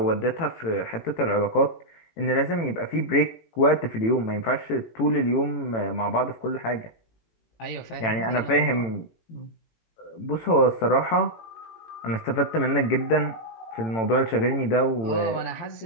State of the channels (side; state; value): right; late; 18 ms